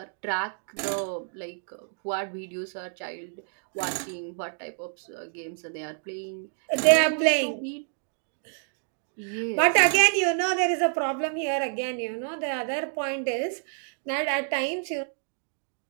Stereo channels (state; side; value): silent; left; digital silence